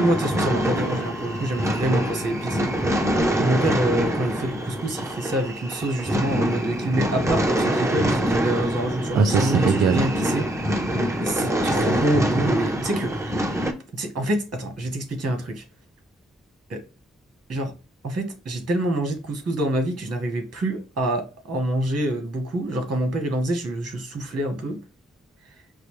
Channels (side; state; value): both; normal; correlation 0.71